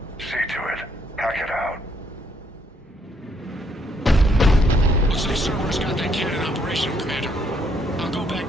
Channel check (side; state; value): both; normal; correlation 0.70